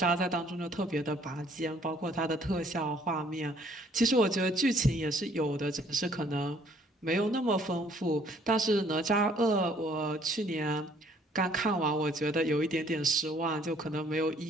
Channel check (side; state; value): both; normal; correlation 0.61